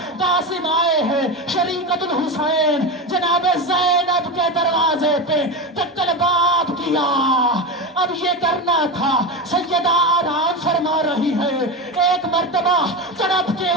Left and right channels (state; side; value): normal; both; correlation 0.20